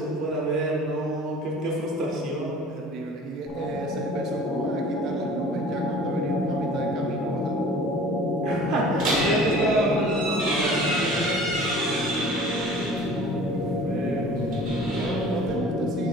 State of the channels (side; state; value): both; normal; correlation 0.45